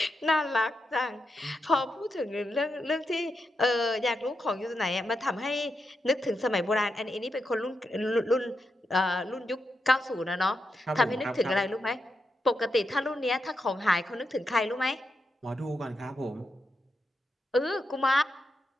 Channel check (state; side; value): normal; both; correlation 0.85